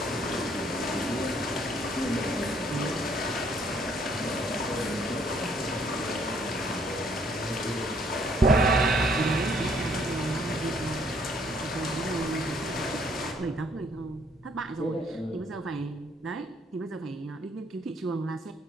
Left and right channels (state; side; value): normal; both; correlation 0.65